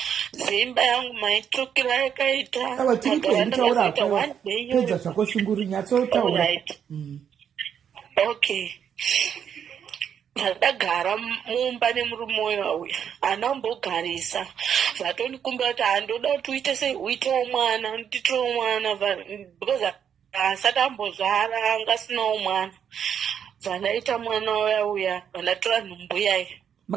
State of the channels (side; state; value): left; quieter; 8.3 dB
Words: zimba yangu maitrokera yakaita pedza zvako shunguru nyatsotaura. Okay. Ndagara mumba nemurume uyu anambogarisa vatondikumbira kuti handoda kuti uite sei uitewo mwana nditowo mwana because asati ambozvara anga asinawo mwana. Vandaita mwana uya vandatora nhumbu yaye.